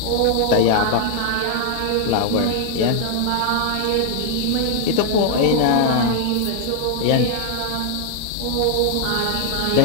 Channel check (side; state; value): both; different; correlation 0.00